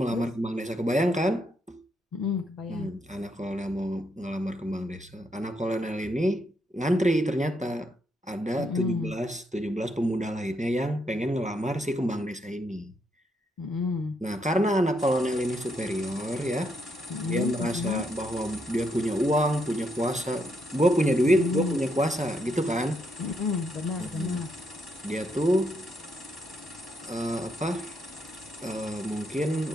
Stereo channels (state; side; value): normal; both; correlation 0.77